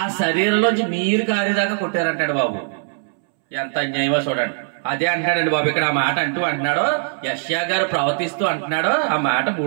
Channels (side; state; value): left; silent; 65 dB below the other